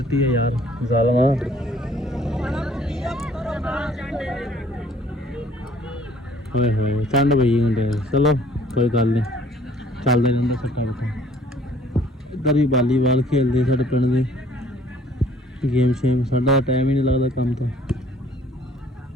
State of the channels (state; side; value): normal; both; correlation 0.57